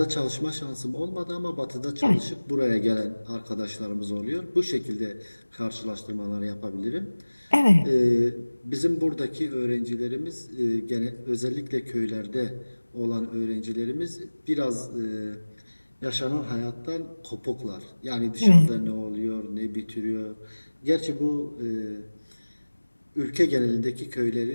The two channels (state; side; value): inverted; both; correlation -1.00